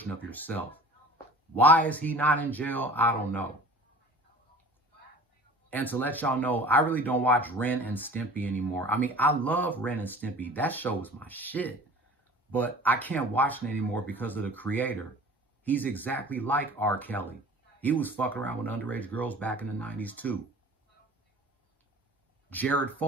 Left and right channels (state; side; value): normal; both; correlation 0.43